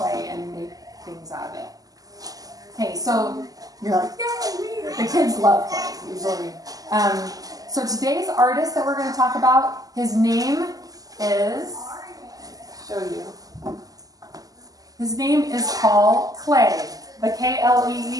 and make things out of it? Okay, so you're like, yay, me. The kids love clay usually. So today's artist that we're going to talk about, his name is, show you. His name is Paul Klee. The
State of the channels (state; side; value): late; left; 0.17 ms